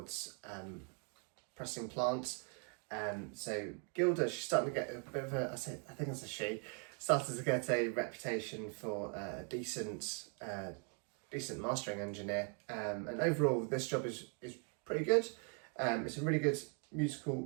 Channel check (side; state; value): left; quieter; 39.5 dB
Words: pressing plant. So Gylda, she's starting to get a bit of I think it's a she, started to get a reputation for a decent mastering engineer, and overall this job is pretty good. It's a really good musical